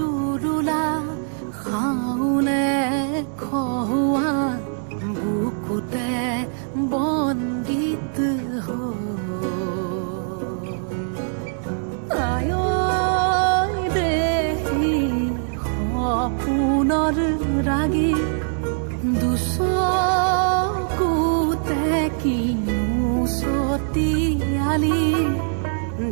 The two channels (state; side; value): silent; left; digital silence